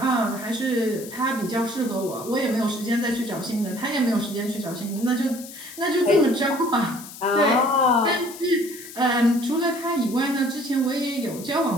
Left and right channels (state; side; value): noise; left; hiss, 15 dB below the sound